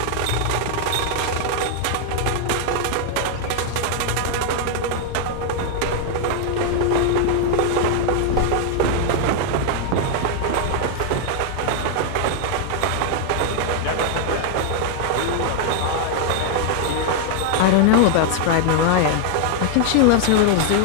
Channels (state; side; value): different; both; correlation 0.00